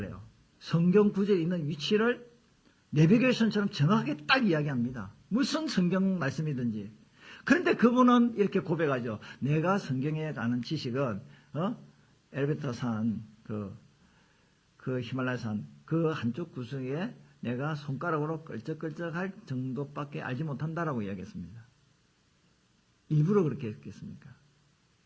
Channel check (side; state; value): both; identical; correlation 1.00